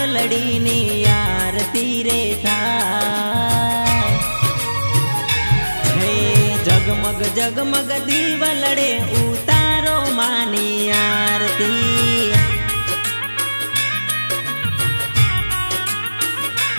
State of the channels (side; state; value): both; inverted; correlation -1.00